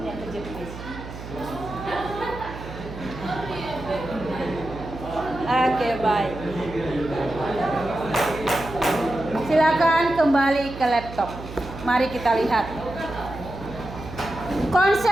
kejepit. Oke, baik. Silakan kembali ke laptop. Mari kita lihat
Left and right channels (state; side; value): noise; right; hum, 11 dB below the sound